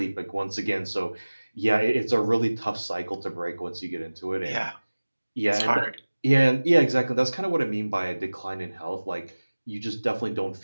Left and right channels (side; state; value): both; inverted; correlation -1.00